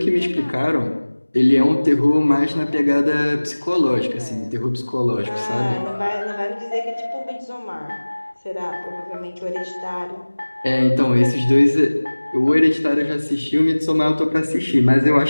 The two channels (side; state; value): both; inverted; correlation -1.00